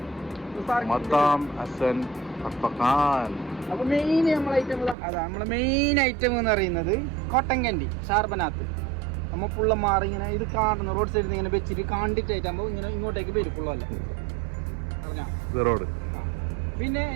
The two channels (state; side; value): drops out; left; at 5.0 s